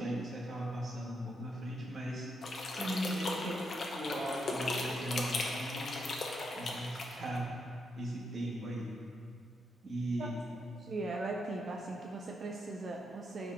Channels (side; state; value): both; normal; correlation 0.81